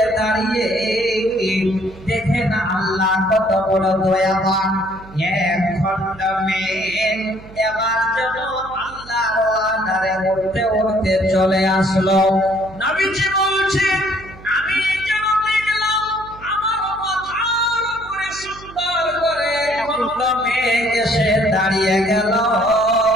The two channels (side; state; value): right; noise; hum, 19 dB below the sound